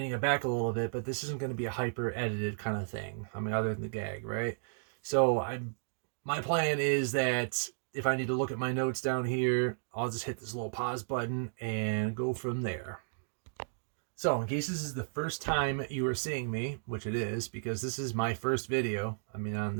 it back a little bit, but this isn't going to be a hyper edited kind of thing. I mean, other than the gag, right? So my plan is that if I need to look at my notes down here, I'll just hit this little pause button and go from there. So in case this is the first time you are seeing me, which it is, because this is my first video, on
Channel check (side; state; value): left; silent; digital silence